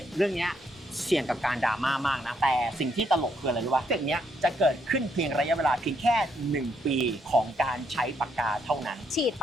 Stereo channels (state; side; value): normal; both; correlation 0.74